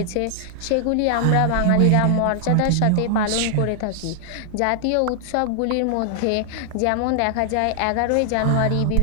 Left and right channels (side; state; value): both; different; correlation 0.00